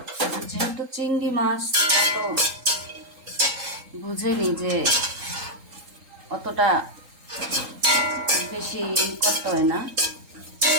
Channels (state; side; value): late; left; 3.8 ms